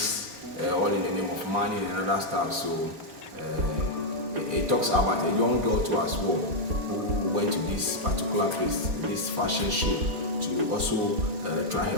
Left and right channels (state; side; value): late; left; 4.1 ms